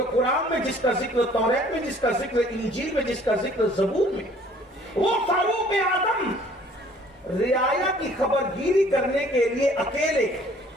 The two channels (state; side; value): normal; both; correlation 0.56